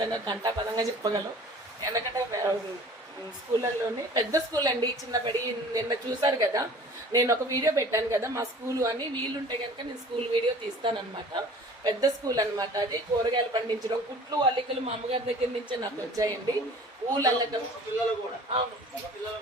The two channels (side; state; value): both; normal; correlation 0.46